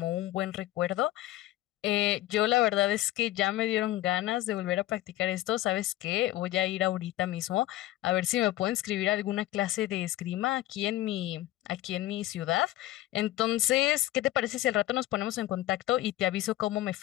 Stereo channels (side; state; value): right; quieter; 15.5 dB